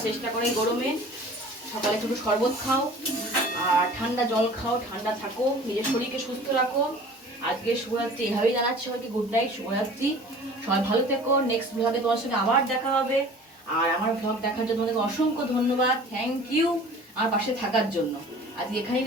চেষ্টা করে এই গরমে। সকালে একটু শরবত খাও আর ঠান্ডা জল খাও, ঠান্ডা থাকো, নিজের শরীরকে সুস্থ রাখো। আজকে শুভরাত্রি এভাবেই জানাচ্ছি সবাইকে, গুড নাইট, শুভরাত্রি। সবাই ভালো থেকো, নেক্সট ব্লগে তোমার সঙ্গে আবার দেখা হবে। আর আমার ব্লগ দেখার জন্য তোমাদেরকে অসংখ্য ধন্যবাদ, থ্যাংক ইউ আমার পাশে থাকার জন্য। আজকে এখানেই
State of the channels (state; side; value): normal; both; correlation 0.44